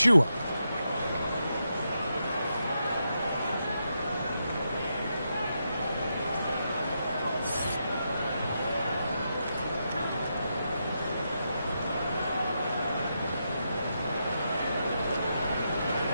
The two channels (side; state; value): both; inverted; correlation -0.84